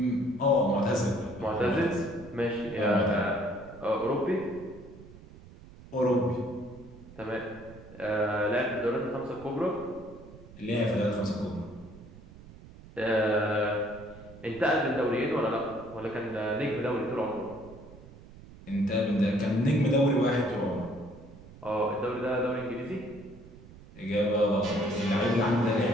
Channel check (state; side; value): noise; right; rumble, 19 dB below the sound